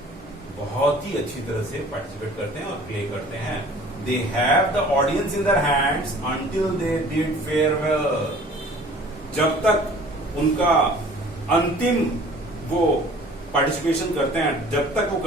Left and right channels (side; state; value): both; normal; correlation 0.49